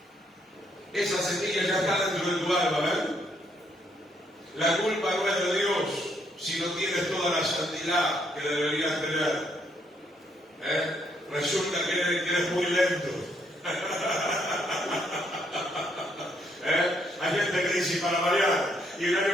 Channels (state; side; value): normal; both; correlation 0.72